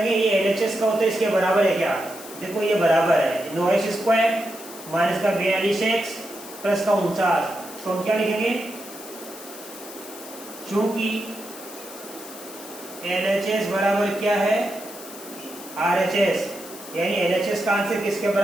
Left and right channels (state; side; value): noise; left; hiss, 15 dB below the sound